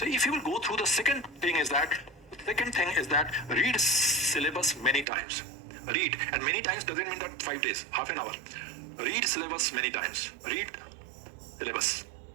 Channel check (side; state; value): left; drops out; at 5.1 s